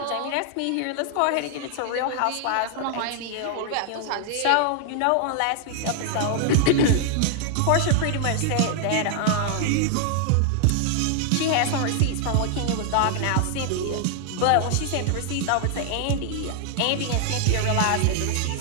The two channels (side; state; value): both; different; correlation 0.00